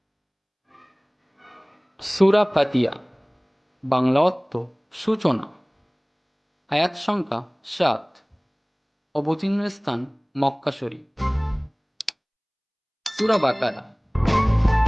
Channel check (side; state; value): both; identical; correlation 1.00